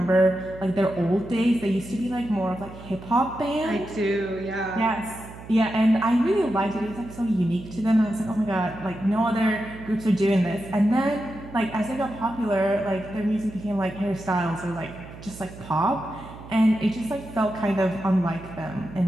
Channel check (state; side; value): noise; right; hum, 15 dB below the sound